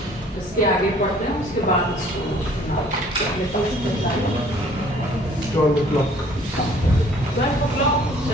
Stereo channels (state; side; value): normal; both; correlation 0.56